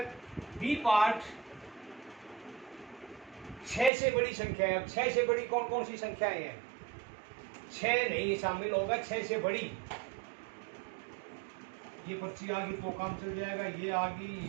बी पार्ट, 6 से बड़ी संख्या है। अब 6 से बड़ी कौन कौन सी संख्याएं हैं? 6 नहीं शामिल होगा, 6 से बड़ी। ये पर्ची आ गई तो काम चल जाएगा, ये आ गई,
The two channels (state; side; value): drops out; left; at 3.9 s